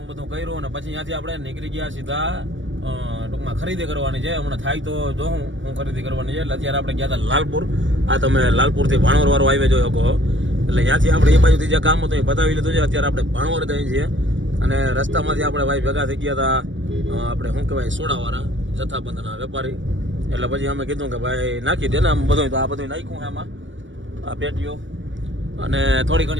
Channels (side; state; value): left; late; 0.56 ms